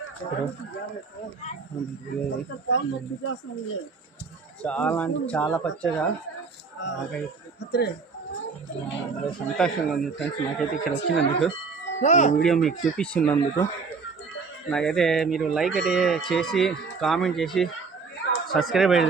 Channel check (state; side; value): quieter; left; 4.8 dB